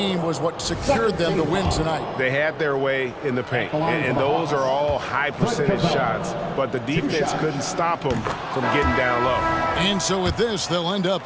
was what secured them the win tonight. They had their way in the paint, and those are all high percentage shots, but the defense couldn't stop them from getting down low. And so with this, they'll end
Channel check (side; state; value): both; identical; correlation 1.00